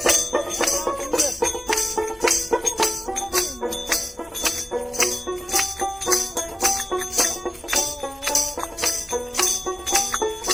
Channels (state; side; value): normal; both; correlation 0.97